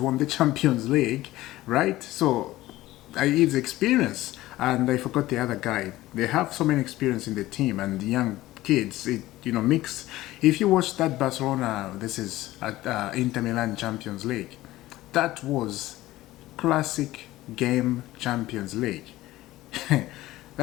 the Champions League, right? So he's experienced. And I forgot the other guy. They have so many experience in the team, and the young kids, mix. If you watch that Barcelona, this is at Inter Milan Champions League, that was classic game Champions League.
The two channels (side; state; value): right; quieter; 16.7 dB